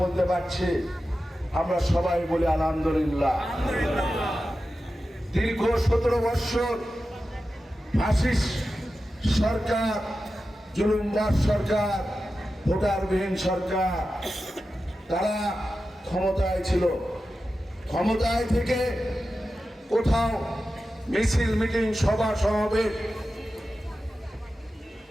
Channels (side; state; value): both; normal; correlation 0.92